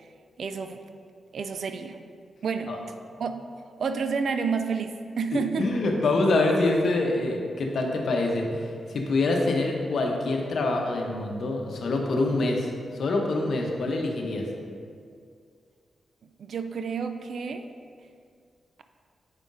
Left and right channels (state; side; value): normal; both; correlation 0.81